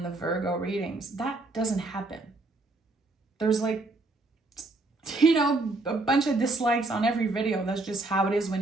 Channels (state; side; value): quieter; left; 3.1 dB